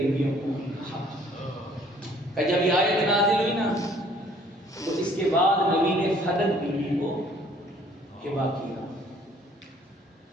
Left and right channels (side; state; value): both; normal; correlation 0.58